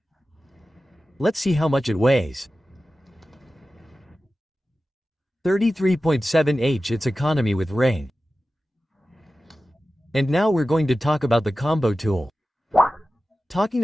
Let's see how much it weighs. 33.7 It's economy with ring. And now we're going to talk about the combo tool. Talking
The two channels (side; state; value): both; normal; correlation 0.94